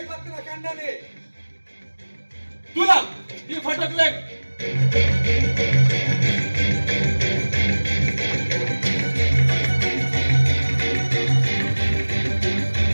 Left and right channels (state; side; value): inverted; both; correlation -1.00